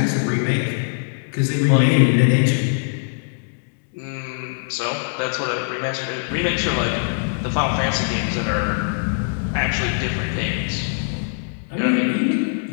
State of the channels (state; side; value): silent; right; digital silence